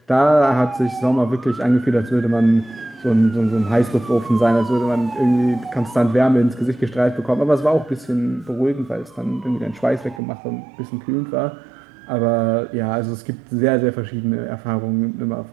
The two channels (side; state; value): left; drops out; at 10.2 s